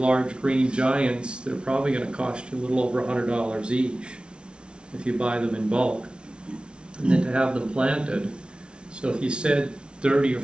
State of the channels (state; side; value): late; left; 0.057 ms